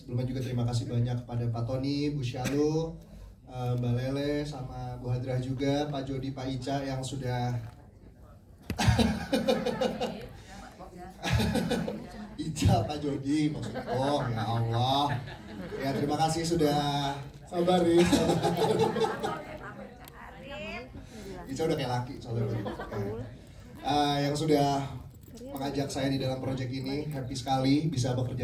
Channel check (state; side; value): identical; both; correlation 1.00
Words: juga terima kasih banyak kepada Pak Tony, Bu Syalu, Mbak Lele, sama Bu Hadrah juga, Pak Jody, Pak Ica yang sudah Ica, Pak Jody maksudnya. Oh ya Allah. Ya terima kasih sudah sabar ya. Ica udah kayak laki soalnya. Yang sudah mengajak saya di dalam proyek ini, happy sekali bisa